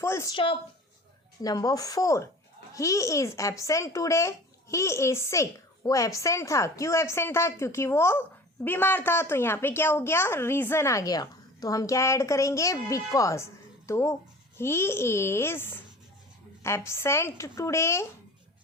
stop. Number 4. He is absent today. He is sick. वो एबसेंट था. क्यों एबसेंट था? क्योंकि वो बीमार था. तो यहाँ पे क्या हो गया? रीज़न आ गया. तो हम क्या ऐड करेंगे? बिकॉज. तो he is absent today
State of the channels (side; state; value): both; normal; correlation 0.42